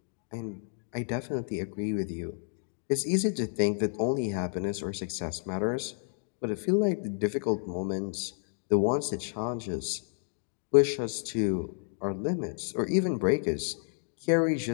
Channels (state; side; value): silent; right; digital silence